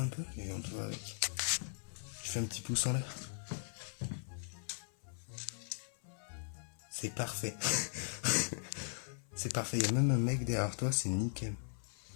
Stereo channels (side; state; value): right; silent; 52 dB below the other